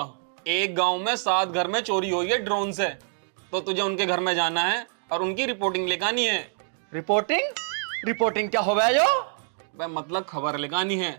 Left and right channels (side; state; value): left; silent; 61 dB below the other